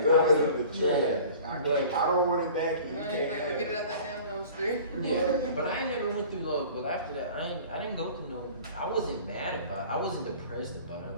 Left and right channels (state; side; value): inverted; both; correlation -0.45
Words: Throw it in the trash. But- I don't want it back, and you Man, can't like, have get it it. out that damn dumpster. Yeah, but I ain't never went through love. But after that, I didn't go through no. I wasn't mad about it. I wasn't depressed about it.